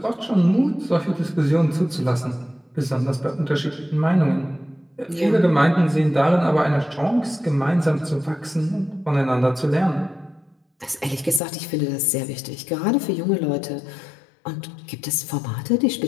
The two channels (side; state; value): right; drops out; at 11.4 s